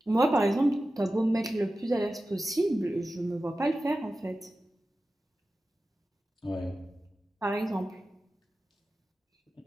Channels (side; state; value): both; normal; correlation 0.94